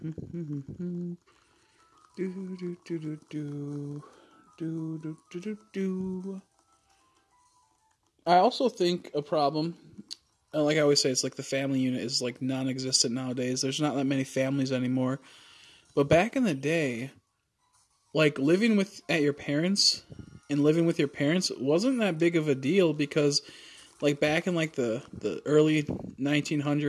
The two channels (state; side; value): identical; both; correlation 1.00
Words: I also think a problem, like I always say, it's like the family unit is like non-existent nowadays. There's not that many families anymore. But back in the day, like living at your parents and living with your parents wasn't that big of a deal, because like back in like the early